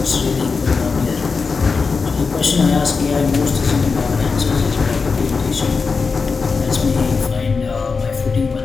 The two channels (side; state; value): right; quieter; 4.8 dB